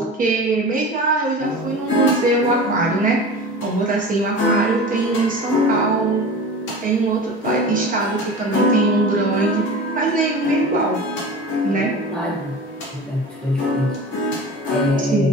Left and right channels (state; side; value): normal; both; correlation 0.34